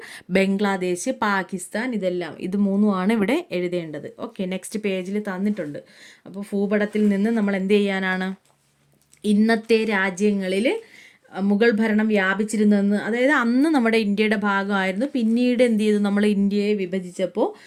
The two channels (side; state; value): both; identical; correlation 1.00